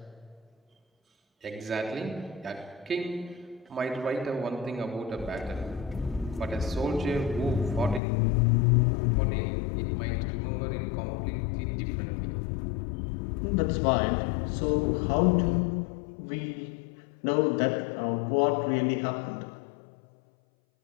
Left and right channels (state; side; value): drops out; right; at 8.0 s